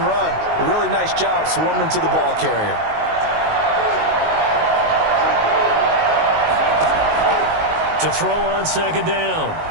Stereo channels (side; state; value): left; late; 19 ms